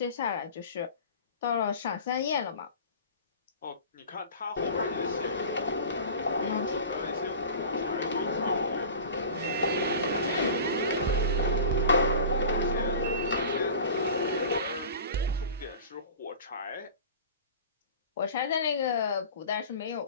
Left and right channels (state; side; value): inverted; both; correlation -0.39